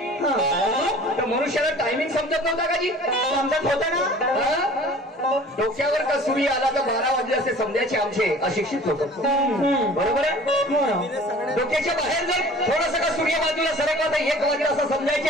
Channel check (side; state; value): both; normal; correlation 0.46